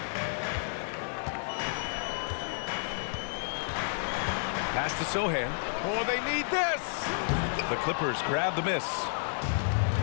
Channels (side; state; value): right; silent; digital silence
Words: Pass to Sohan. Oh, they need this. The Clippers grab the miss.